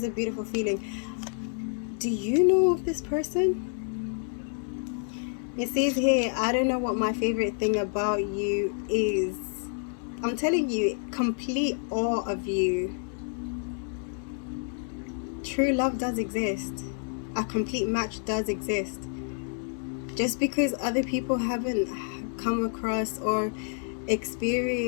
a beautiful feeling. Do you know of this person? It says here, I don't know what my favorite thing about you is. I'm telling you, complete awe of you. True love does exist. A complete match does exist. Just because other people haven't come across or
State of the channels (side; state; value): right; silent; 56 dB below the other